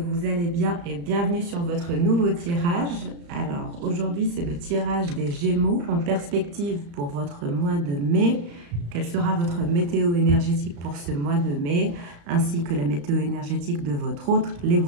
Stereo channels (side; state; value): left; late; 35 ms